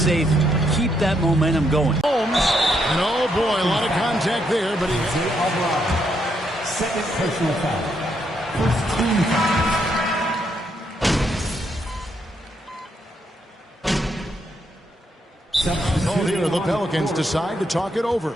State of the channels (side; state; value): both; normal; correlation 0.76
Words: Keep that momentum going. Holmes. And oh boy, a lot of contact there, but he... Second personal foul. First team foul. Oh, here the Pelicans decide to talk it over.